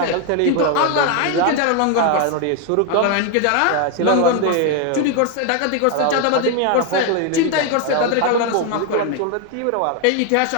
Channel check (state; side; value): different; both; correlation 0.01